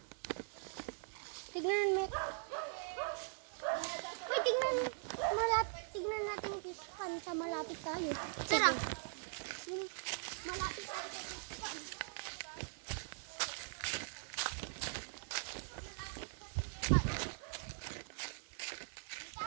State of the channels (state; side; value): silent; left; digital silence